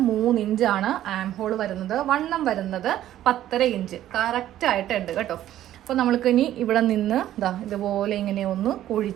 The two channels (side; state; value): left; quieter; 12.7 dB